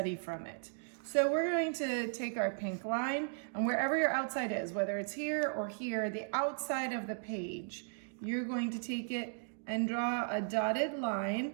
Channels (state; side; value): silent; left; digital silence